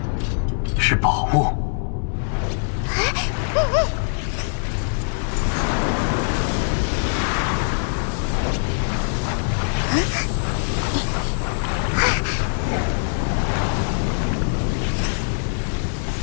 是宝物。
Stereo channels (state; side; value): silent; right; digital silence